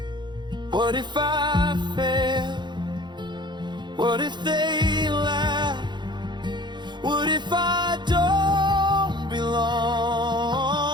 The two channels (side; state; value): left; late; 0.22 ms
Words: What if I fail? What if they laugh? What if I don't belong?